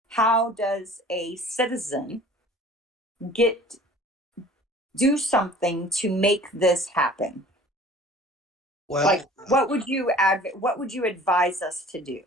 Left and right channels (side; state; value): both; normal; correlation 0.47